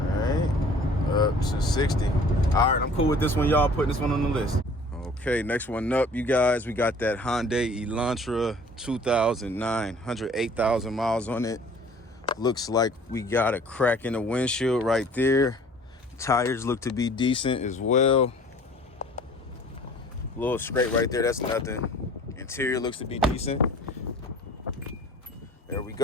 right, up to 60. All right, I'm cool with this one, y'all. Putting this one on the list. Okay, next one up, you guys. We got that Hyundai Elantra 2009, 108,000 miles on it. Looks like we got a crack in the windshield right there. Tires look to be decent as well. A little scrape right there, that's nothing. Interior looks to be decent. There we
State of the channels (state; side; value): normal; both; correlation 0.50